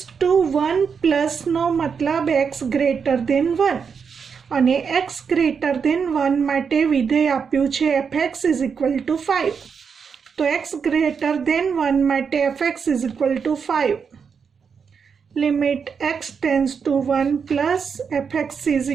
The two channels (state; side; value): quieter; left; 6.2 dB